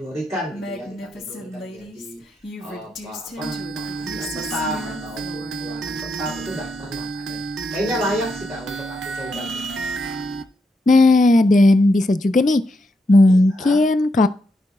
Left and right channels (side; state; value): both; normal; correlation 0.82